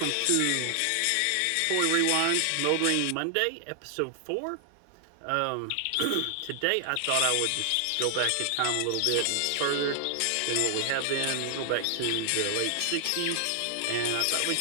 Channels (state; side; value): different; both; correlation 0.00